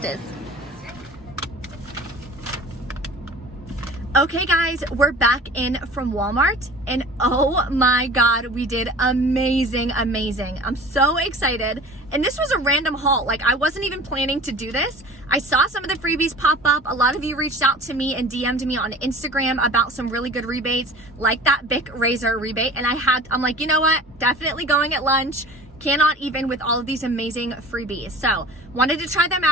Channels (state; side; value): normal; both; correlation 0.41